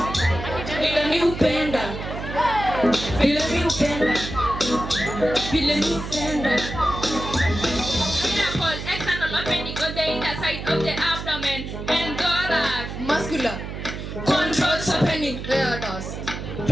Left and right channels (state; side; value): noise; right; hum, 7 dB below the sound